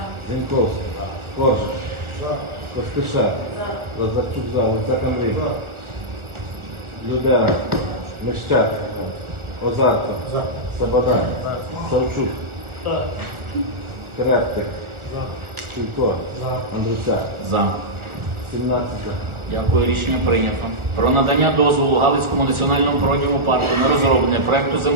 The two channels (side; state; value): left; late; 1.4 ms